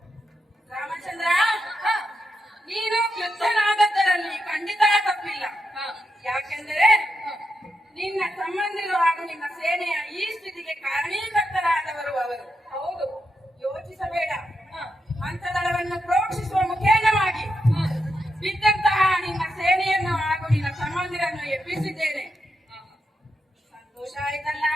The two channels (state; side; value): normal; both; correlation 0.85